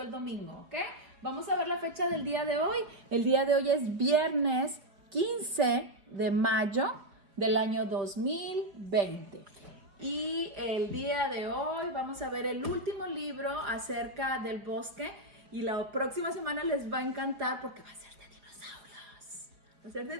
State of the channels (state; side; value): late; left; 4.7 ms